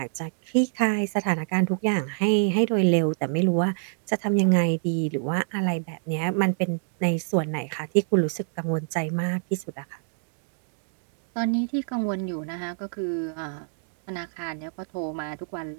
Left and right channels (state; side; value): silent; left; digital silence